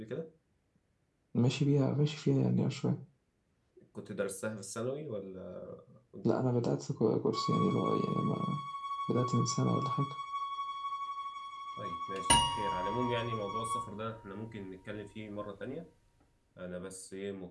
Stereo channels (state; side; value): identical; both; correlation 1.00